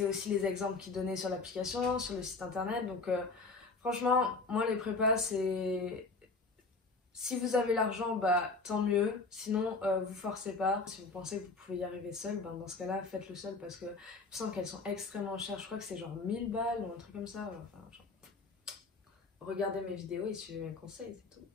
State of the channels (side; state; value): right; quieter; 3.8 dB